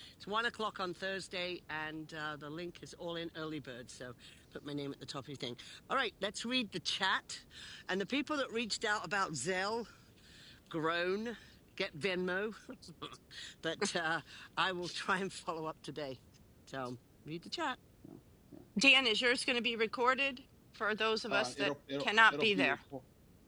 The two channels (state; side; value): identical; both; correlation 1.00